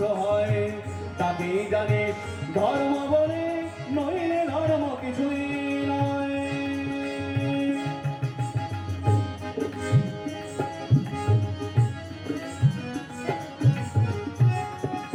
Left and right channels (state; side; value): identical; both; correlation 1.00